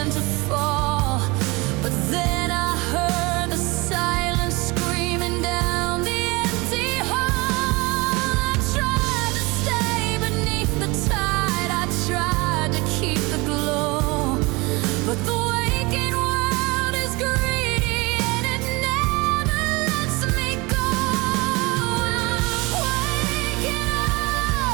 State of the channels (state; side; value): quieter; left; 24.9 dB